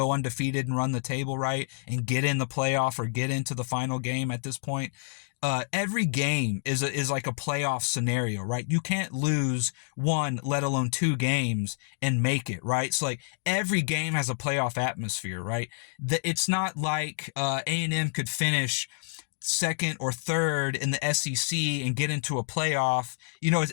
undefeated and run the table, right, and get in the playoff or get into the final game at this point. Every game is like a playoff scenario, right? You can't lose 1, let alone 2 games and make it, right? So like every game has a playoff atmosphere, right? It's not like A&M could finish second or third in the SEC and get into a playoff.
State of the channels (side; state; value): right; silent; digital silence